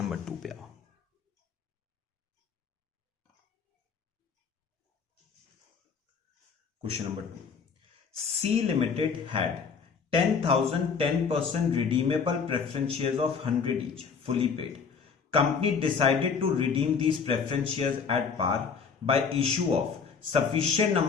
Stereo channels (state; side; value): quieter; right; 5.9 dB